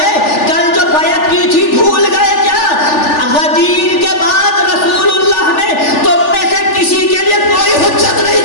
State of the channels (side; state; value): right; late; 3.4 ms